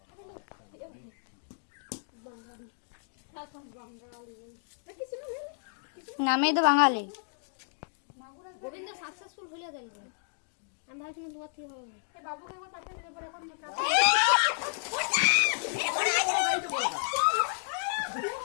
বাঙালি। এখন বাঙালি। কিছু না নামেই তো বাঙালি। গোবিন্দ সাকসেসফুল হলে গেল। আমি ভাবছিলাম তোমার থেকে হবে না। এই বাবুকে একবার পাঠিয়ে দিলে পরে এখন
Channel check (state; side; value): silent; right; digital silence